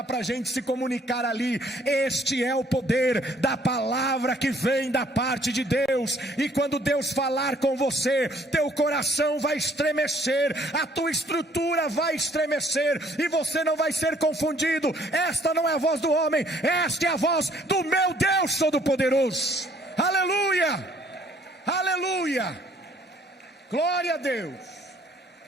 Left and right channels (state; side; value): normal; both; correlation 0.61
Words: para a gente se comunicar ali. Este é o poder da palavra que vem da parte de Deus. E quando Deus falar com você, teu coração vai estremecer, a tua estrutura vai estremecer, e você não vai ser confundido. Esta não é a voz do homem, esta é a voz do meu Deus Todo-Poderoso. Aleluia, aleluia, glória a Deus,